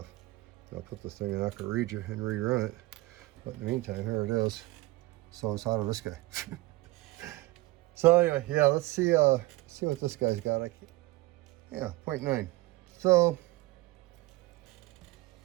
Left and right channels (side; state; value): left; quieter; 19.8 dB